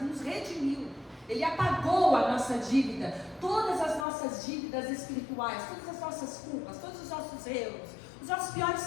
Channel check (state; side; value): drops out; right; at 4.0 s